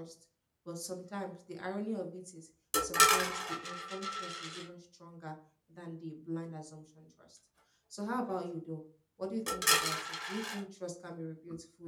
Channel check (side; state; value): both; identical; correlation 1.00